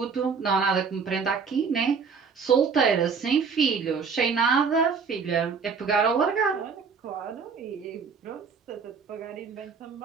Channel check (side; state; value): left; quieter; 5.6 dB